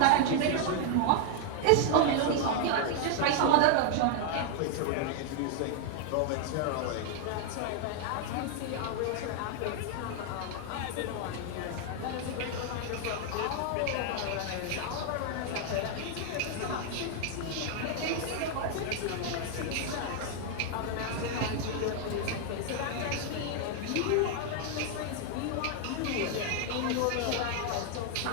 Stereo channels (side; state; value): both; different; correlation 0.00